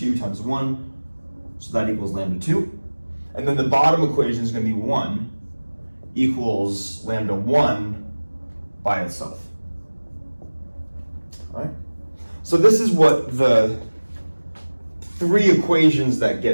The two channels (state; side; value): inverted; both; correlation -1.00